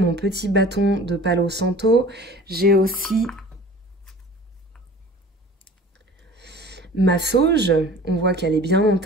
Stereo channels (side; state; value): both; normal; correlation 0.43